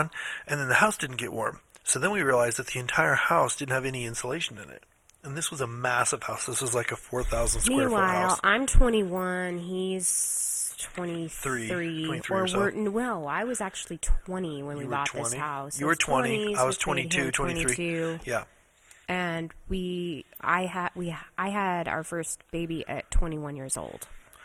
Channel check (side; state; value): both; identical; correlation 1.00